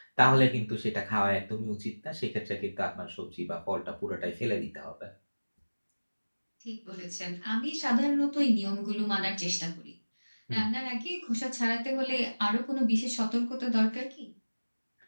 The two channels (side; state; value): both; inverted; correlation -1.00